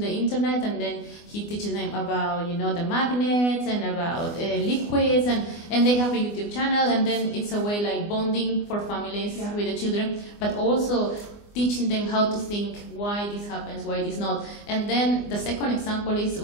the internet, and then he teaches them about, the magnets and about liquids, and they have a YouTube channel, and then it's a way like bonding for families with the children, but also teaching them how to think, why this happens, why this not. And then the second example is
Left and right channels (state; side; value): late; right; 24 ms